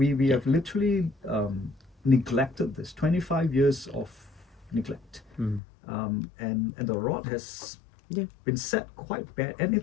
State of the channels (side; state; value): right; drops out; at 5.6 s